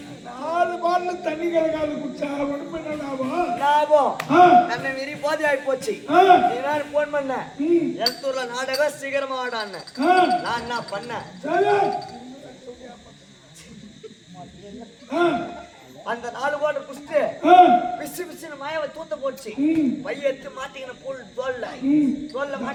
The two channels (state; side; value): identical; both; correlation 1.00